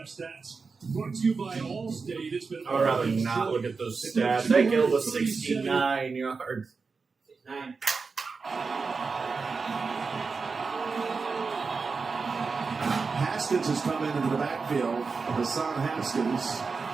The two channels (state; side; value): quieter; left; 4.7 dB